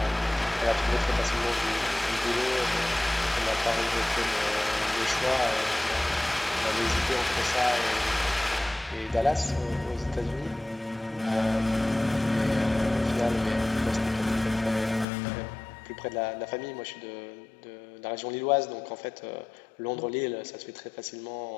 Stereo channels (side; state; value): right; drops out; at 15.1 s